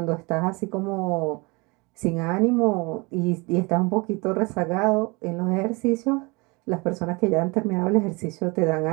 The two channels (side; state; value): left; quieter; 27.2 dB